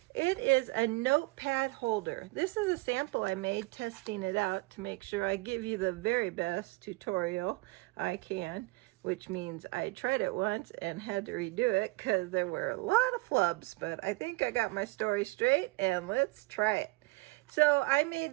It is a notepad holder. This is a sample I made testing it out to make sure I give you the very best tutorial I can, which means I tried it once and had to redo it because there were a lot of flubs, but I think I got my story straight and let's try it. So I made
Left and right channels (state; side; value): quieter; left; 23.5 dB